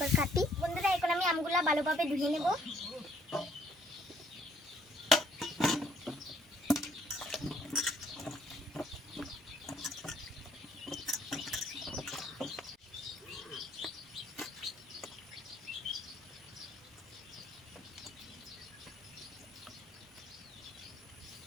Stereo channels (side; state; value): both; normal; correlation 0.65